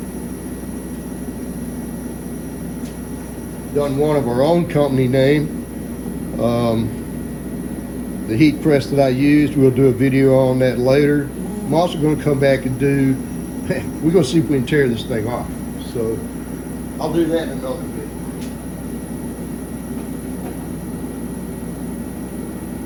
Done one of our own company name. The heat press that I used, we'll do a video on that later. I'm also going to come back and do, we're going to see if we can tear this thing off. So I'll do that in another video.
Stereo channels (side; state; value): both; identical; correlation 1.00